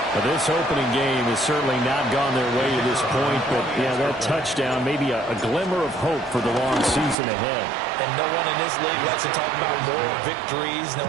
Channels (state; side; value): drops out; left; at 7.2 s